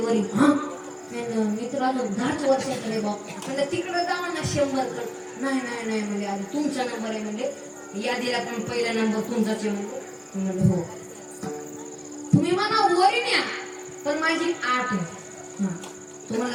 हा मी तर आलो 10 वर्षाकडे बाप म्हणजे तिकडे जावा ना 100 कड. नाही नाही नाही म्हणजे आधी तुमचा नंबर आहे म्हणजे यादीला पण पहिला नंबर तुमचाच आहे म्हणजे हो तुम्ही मला वरी न्या पण माझी 8 आहे. हा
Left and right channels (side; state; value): both; identical; correlation 1.00